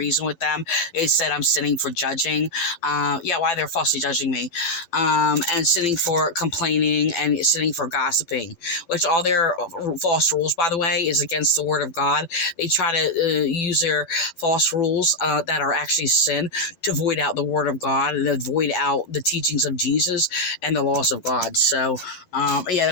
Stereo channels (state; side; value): late; right; 12 ms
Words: with them. They said I'm sinning for judging. Why they're falsely judging me. And sinning for complaining and sinning for gossiping, which all their false rules, by the way, is against the word of God. They try to use their false rules that are actually sin to void out the word of God and to void out the teachings of Jesus and the laws of God. So, they